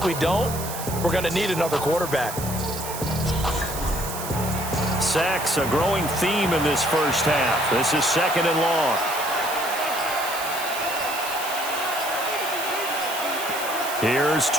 we don't, we're going to need another quarterback. Sacks, a growing theme in this first half. This is 2nd and long. Here's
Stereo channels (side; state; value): right; noise; hiss, 8 dB below the sound